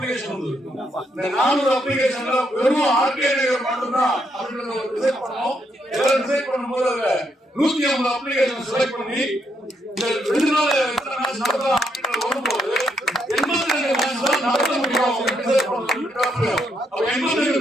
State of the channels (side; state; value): both; normal; correlation 0.76